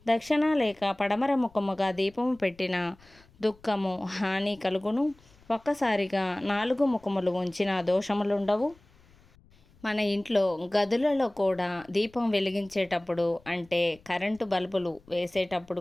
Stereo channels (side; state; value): left; noise; rumble, 29 dB below the sound